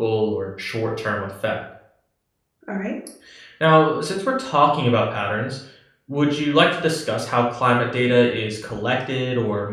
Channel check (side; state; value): both; identical; correlation 1.00